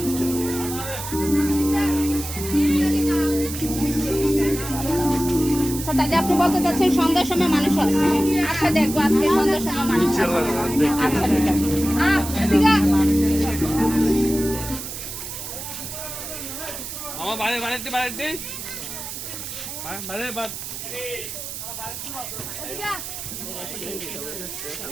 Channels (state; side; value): noise; right; hiss, 8 dB below the sound